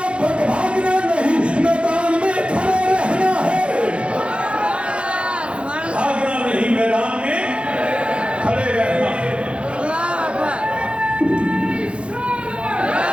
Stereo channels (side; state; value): left; late; 0.059 ms